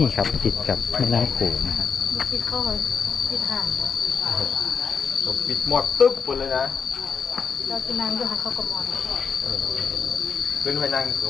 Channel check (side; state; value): right; quieter; 6.0 dB